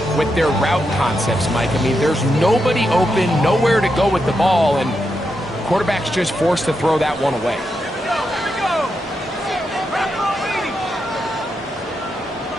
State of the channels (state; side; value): normal; both; correlation 0.84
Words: with their route concepts, Mike. I mean, there's nobody open, nowhere to go with the ball, and quarterback's just forced to throw that one away.